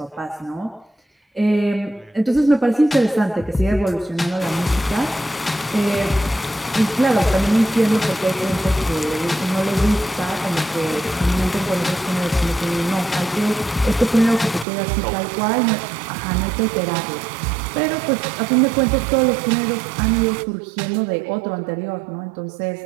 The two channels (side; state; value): left; drops out; at 14.7 s